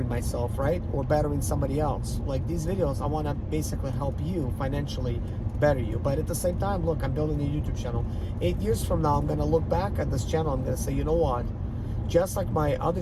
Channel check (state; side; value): identical; both; correlation 1.00